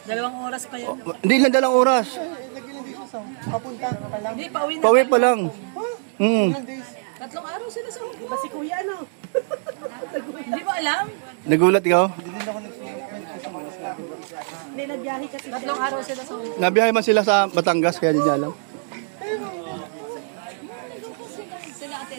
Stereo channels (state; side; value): silent; left; 63 dB below the other